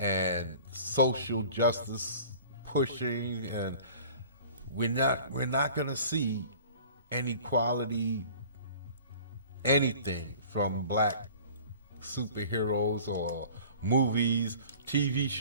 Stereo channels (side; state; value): both; inverted; correlation -0.45